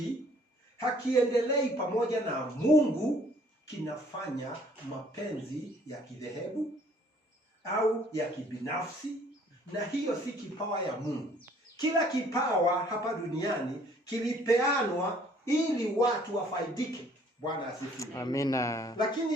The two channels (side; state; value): both; normal; correlation 0.59